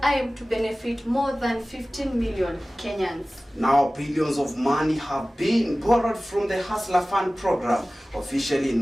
aim to benefit more than 15 million Kenyans. Now, billions of money have been borrowed from the Hustler Fund program, officially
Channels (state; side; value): normal; both; correlation 0.97